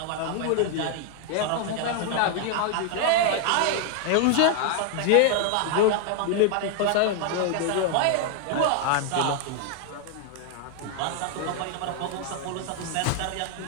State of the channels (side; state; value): both; different; correlation 0.00